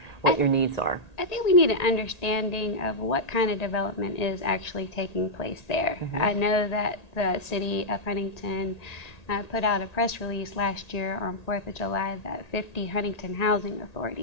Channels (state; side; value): late; right; 1.8 ms